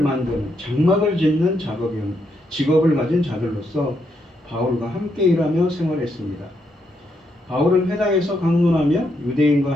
짓는 직업을 가진 자들로서 바울과 함께 일하며 생활했습니다. 바울은 회당에서 강론하며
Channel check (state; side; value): normal; both; correlation 0.78